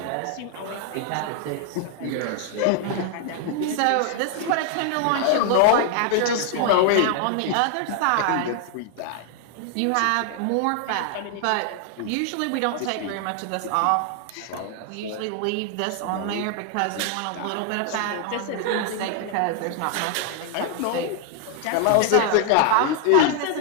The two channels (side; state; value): both; different; correlation 0.00